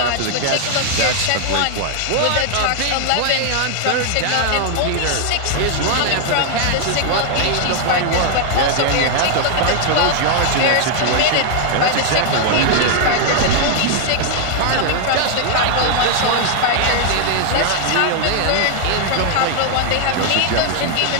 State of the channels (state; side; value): different; both; correlation 0.00